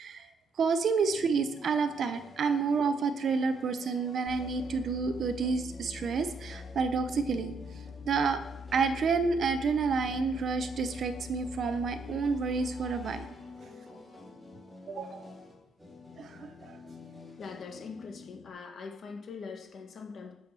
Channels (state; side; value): quieter; left; 4.1 dB